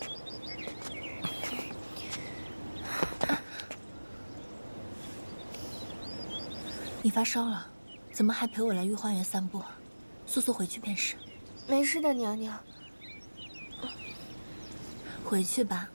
你发烧了，怎么还陪我来御花园散步？速速回去便是。没事的，娘娘。回去吧。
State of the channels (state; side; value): inverted; both; correlation -1.00